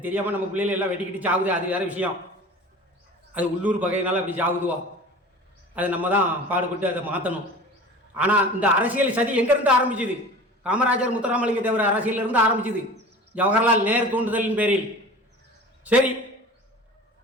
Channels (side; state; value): both; normal; correlation 0.39